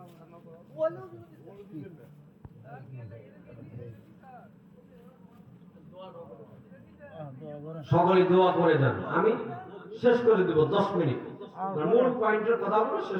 সকলে দোয়া করে যান, আমি শেষ করে দেব 10 মিনিট, মূল পয়েন্টের কথাগুলো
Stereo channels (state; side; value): identical; both; correlation 1.00